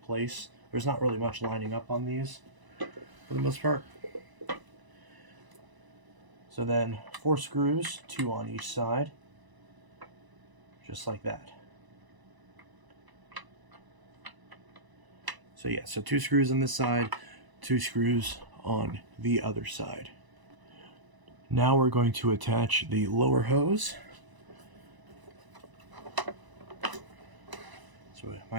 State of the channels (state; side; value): late; left; 1.0 ms